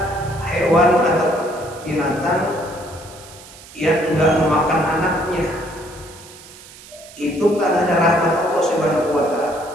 hewan atau binatang yang enggak memakan anaknya, itu karena ada rahmat Allah Subhanahu wa Ta'ala.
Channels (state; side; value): noise; right; hiss, 19 dB below the sound